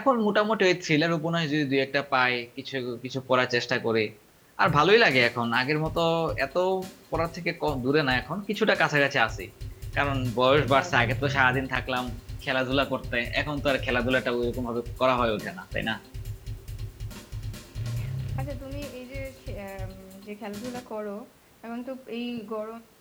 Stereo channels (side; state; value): both; identical; correlation 1.00